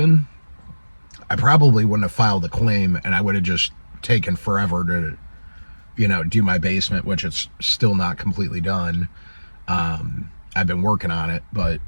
I probably wouldn't have filed a claim, and I would have just taken forever to, do my basement, which it's still not completely done. I've been working on it, but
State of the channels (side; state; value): both; inverted; correlation -1.00